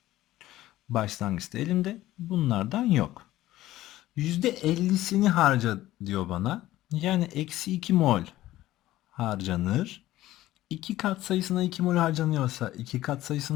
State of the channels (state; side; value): quieter; right; 15.3 dB